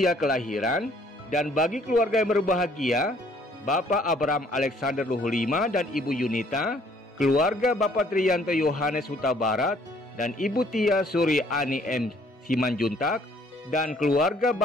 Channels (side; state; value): both; normal; correlation 0.61